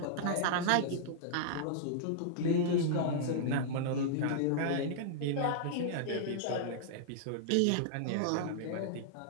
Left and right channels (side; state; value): both; different; correlation -0.02